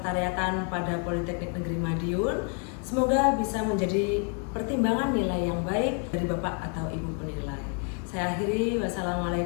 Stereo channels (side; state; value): right; quieter; 39.4 dB